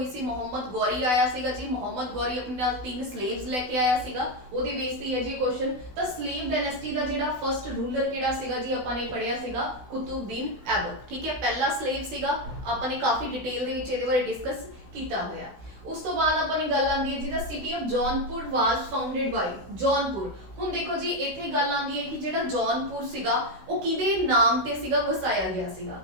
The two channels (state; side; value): late; left; 16 ms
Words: ਸੀ। ਮੁਹੰਮਦ ਗੌਰੀ ਆਇਆ ਸੀਗਾ ਜੀ। ਮੁਹੰਮਦ ਗੌਰੀ ਆਪਣੇ ਨਾਲ 3 slaves ਲੈ ਕੇ ਆਇਆ ਸੀਗਾ, ਉਹਦੇ ਬੇਸ ਤੇ ਹੈ ਜੀ ਕੁਐਸਚਨ। ਤਾਂ slave dynasty ਦਾ ਜਿਹੜਾ ਫਸਟ ਰੂਲਰ ਕਿਹੜਾ ਸੀਗਾ ਜੀ, ਆਪਾਂ ਨੇ ਪੜ੍ਹਿਆ ਸੀਗਾ ਕੁਤੁਬਦੀਨ ਐਬਕ, ਠੀਕ ਹੈ। ਪਹਿਲਾ slave ਸੀਗਾ, ਆਪਾਂ ਨੇ ਕਾਫੀ ਡਿਟੇਲ ਦੇ ਵਿੱਚ ਇਹਦੇ ਬਾਰੇ ਡਿਸਕਸ ਕੀਤਾ ਹੋਇਆ। ਉਸ ਤੋਂ ਬਾਅਦ ਆਪਾਂ ਨੇ ਗੱਲ ਆਂਦੀ ਹੈ ਜਿਹਦਾ city of Jaunpur was founded by Jaunpur. ਹੁਣ ਦੇਖੋ ਜੀ ਇੱਥੇ ਗੱਲ ਆਂਦੀ ਹੈ ਕਿ ਜਿਹੜਾ ਜੌਨਪੁਰ ਸੀਗਾ ਉਹ ਕਿਹਦੇ ਨਾਮ ਤੇ ਸੀਗਾ ਵਸਾਇਆ ਗਿਆ ਸੀਗਾ।